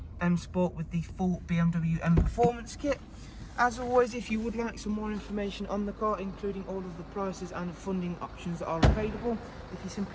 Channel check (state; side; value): identical; both; correlation 1.00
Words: M Sport with the full BMW Mperformance Kit. As always, if you would like some more information on the car, including all of the prices and funding options that are available, if you